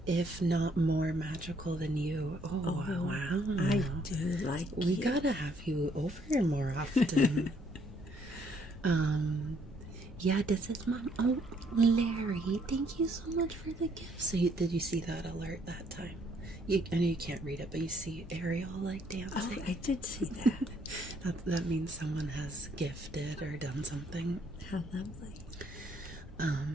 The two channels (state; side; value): normal; both; correlation 0.67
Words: if not more magical than you. Oh wow. I do like We you. gotta have you over here more often. Yeah, this is mom. Oh, Larry, thank you so much for the gift. So did you see that alert that time? I know you can't read it, but you see Ariel dancing. Oh, I did see that. That means someone has gifted or done something. How lovely.